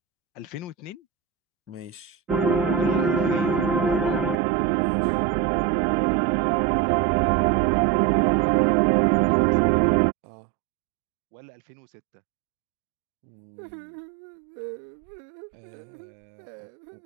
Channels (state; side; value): drops out; left; at 4.4 s